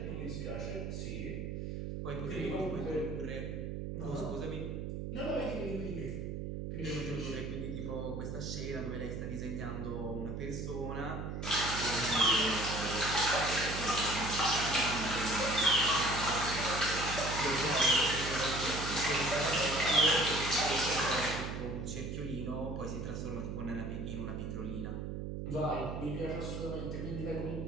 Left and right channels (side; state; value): right; noise; hum, 4 dB below the sound